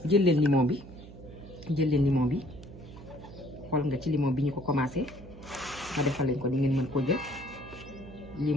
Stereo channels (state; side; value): noise; right; hum, 16 dB below the sound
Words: jël leen limon bi xool nga ci limon bi ñu ko commencé ma defal leen ko ni ngeen mën koo jël